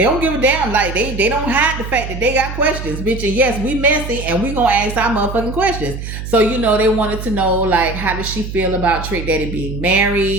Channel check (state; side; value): noise; right; hum, 8 dB below the sound